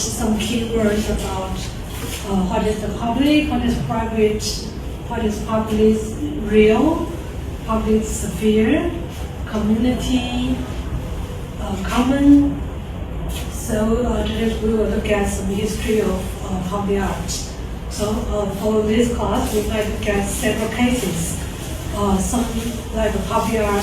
keywords about what is the public, what is private, what is public real, public sphere, community, common. So today we will look at some history of public art. So for this class, we might look at several cases. Some like public art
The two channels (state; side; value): identical; both; correlation 1.00